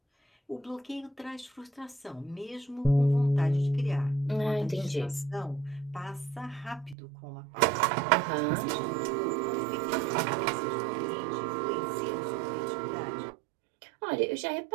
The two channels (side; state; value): left; drops out; at 7.0 s